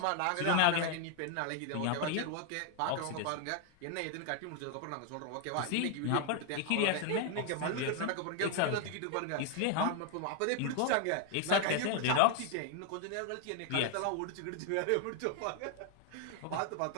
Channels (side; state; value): both; different; correlation 0.00